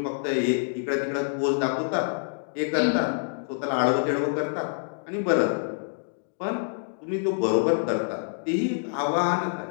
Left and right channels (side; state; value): right; silent; digital silence